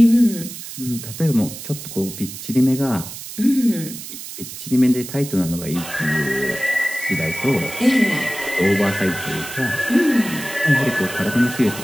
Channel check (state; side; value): noise; right; hiss, 11 dB below the sound